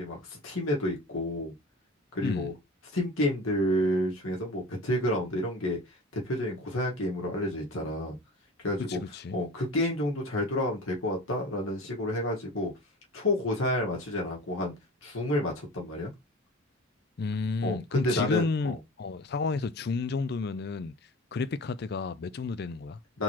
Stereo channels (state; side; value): normal; both; correlation 0.37